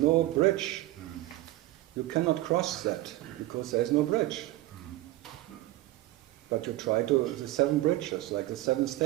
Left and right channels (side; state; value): left; quieter; 16.7 dB